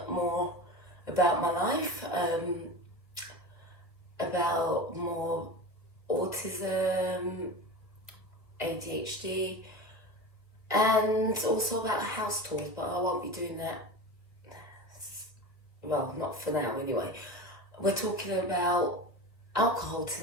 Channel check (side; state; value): right; late; 1.7 ms